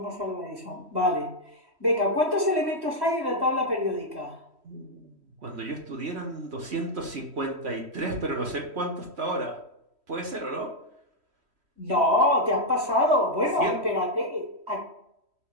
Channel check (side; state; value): left; late; 3.1 ms